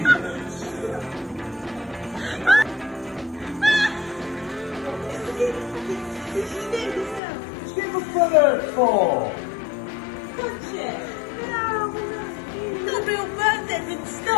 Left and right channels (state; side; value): drops out; right; at 7.2 s